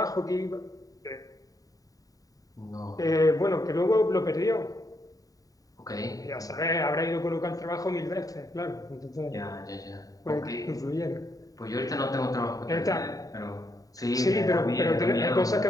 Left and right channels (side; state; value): right; late; 0.17 ms